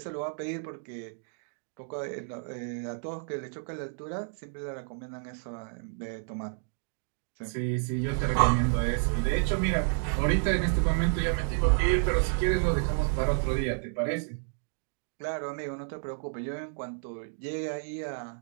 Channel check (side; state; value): left; silent; digital silence